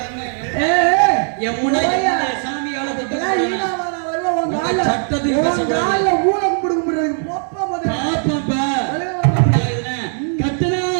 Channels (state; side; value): silent; left; 56 dB below the other